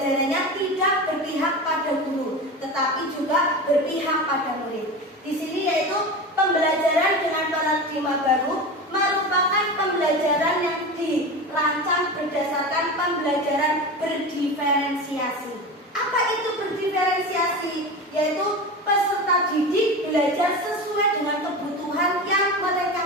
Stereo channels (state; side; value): normal; both; correlation 0.27